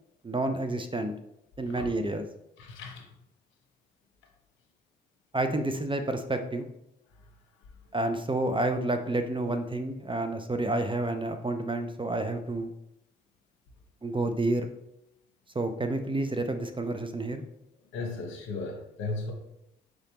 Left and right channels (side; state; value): both; normal; correlation 0.63